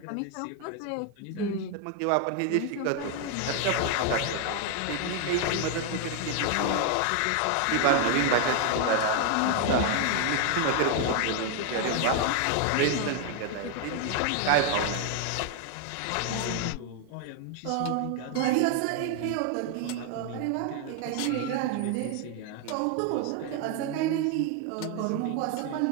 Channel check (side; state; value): both; different; correlation 0.00